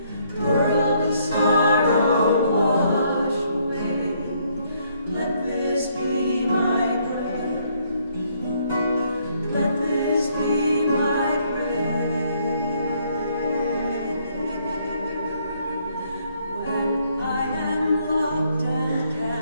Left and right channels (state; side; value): inverted; both; correlation -0.69